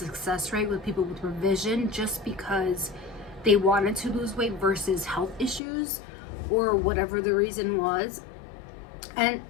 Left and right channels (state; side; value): drops out; right; at 5.6 s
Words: rate with people with revision just because they wanted to lose weight versus health issues or whatever the reason was. And